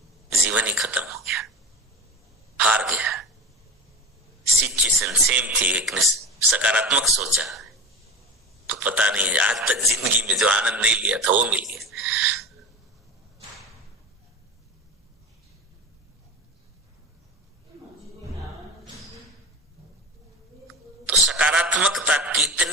जीवन ही खत्म हो गया, हार गया। सिचुएशन सेम थी, एक ने सकारात्मक सोचा तो पता नहीं आज तक जिंदगी में जो आनंद नहीं लिया था वो मिल गया। तो सकारात्मकता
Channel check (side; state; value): both; normal; correlation 0.29